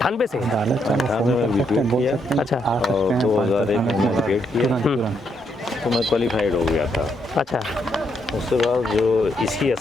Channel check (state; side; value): normal; both; correlation 0.76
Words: से? 98 में बीपीएड किया अच्छा और 2001 में बीपीएड किया, तो मैं क्वालिफाइड हो गया था। अच्छा, उसके बाद जो इसकी